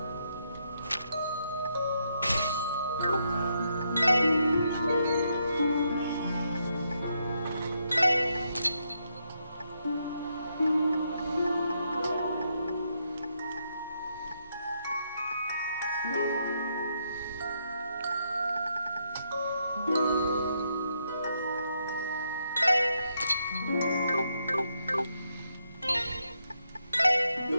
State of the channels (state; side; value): inverted; both; correlation -0.78